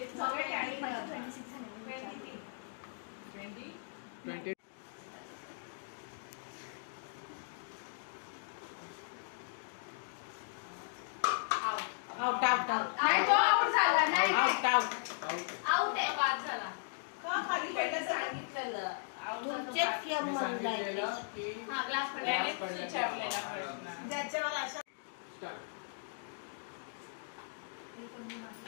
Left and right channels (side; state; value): right; silent; digital silence